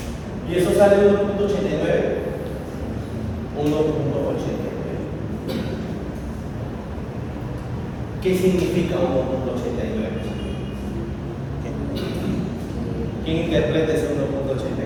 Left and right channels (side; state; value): both; identical; correlation 1.00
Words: Y eso sale 1.89. 1.89. ¿Qué significa 1.89? ¿Quién interpreta ese 1.89?